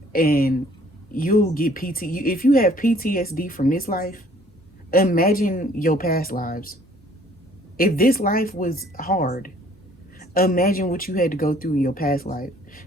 and you'll get if you have PTSD from this life, imagine your past lives. If this life was hard, Imagine what you had to go through in your past life.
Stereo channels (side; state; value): both; normal; correlation 0.58